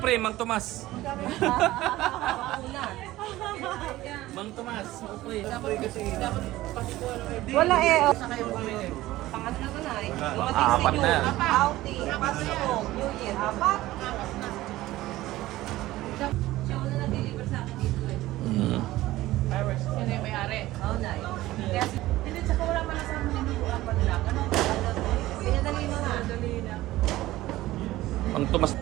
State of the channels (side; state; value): left; quieter; 16.7 dB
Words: pre, Mang Tomas. Mang Tomas, pre. Wala eh. Pangat na na eh. Apat na yan. Outing. Pasko. New Year. Apat. Siya wala na-deliver sa akin dito eh. Fireworks. Sino yung may-ari? Oo na eh. Hindi, tsaka wala man sa mga nilubuan pa nila. Ganun. Pinadali mo na. Dali na. Mang Tomas.